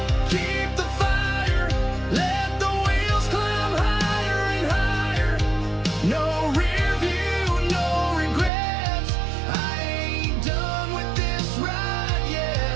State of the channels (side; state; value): left; drops out; at 8.5 s